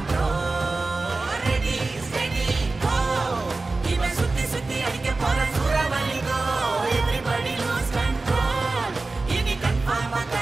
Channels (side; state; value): left; quieter; 3.5 dB